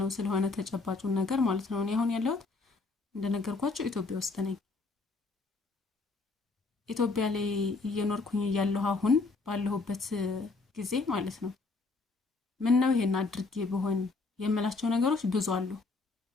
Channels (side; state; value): right; quieter; 3.8 dB